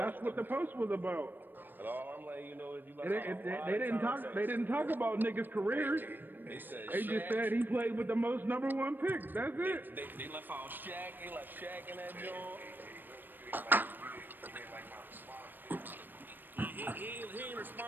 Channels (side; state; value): left; late; 0.092 ms